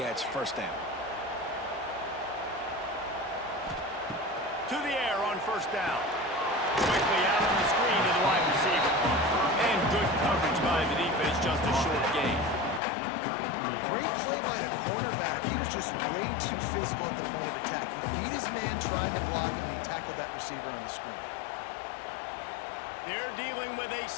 first down. To the air on first down. Quickly out on the screen to the wide receiver. And good coverage by the defense, just a short gain. Great play by the cornerback. He was just way too physical at the point of attack. He beat his man trying to block him, and he tackled that receiver on the screen. They're dealing with a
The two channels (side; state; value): right; drops out; at 12.8 s